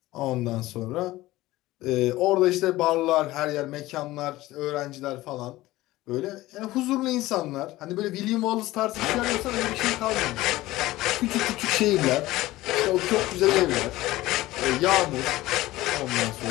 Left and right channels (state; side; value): quieter; right; 17.5 dB